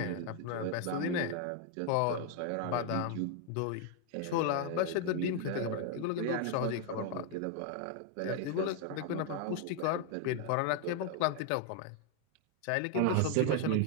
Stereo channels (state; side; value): different; both; correlation 0.00